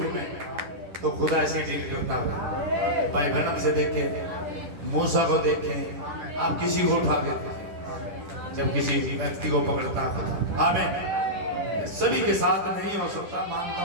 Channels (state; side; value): late; left; 10 ms